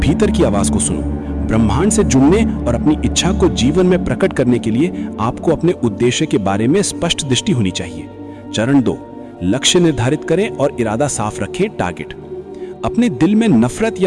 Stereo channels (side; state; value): both; identical; correlation 1.00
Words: की आवाज को सुनो। ब्रह्मांड से जुड़ने और अपनी इच्छा को जीवन में प्रकट करने के लिए आपको अपने उद्देश्य के बारे में स्पष्ट दृष्टि होनी चाहिए। चरण 2, लक्ष्य निर्धारित करें और इरादा साफ रखें, टारगेट। अपने दिल में नफरत